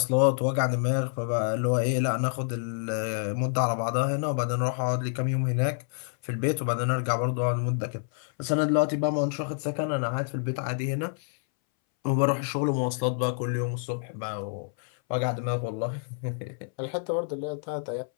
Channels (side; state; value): right; silent; 59 dB below the other